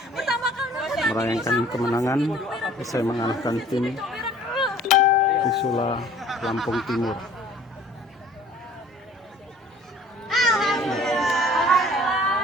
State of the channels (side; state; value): both; normal; correlation 0.51